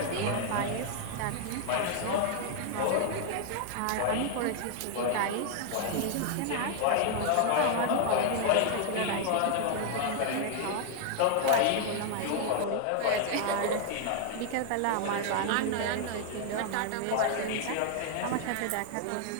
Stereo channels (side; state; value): both; different; correlation 0.00